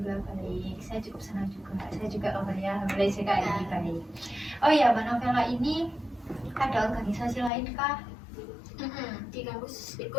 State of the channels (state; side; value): drops out; right; at 7.5 s